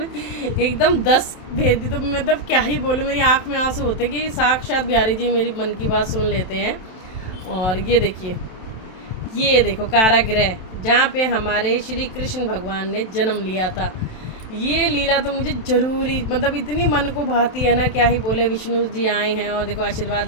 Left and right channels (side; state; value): right; late; 27 ms